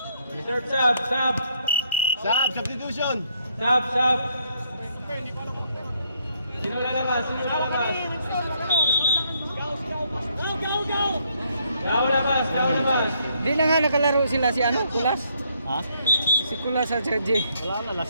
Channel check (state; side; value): inverted; both; correlation -0.72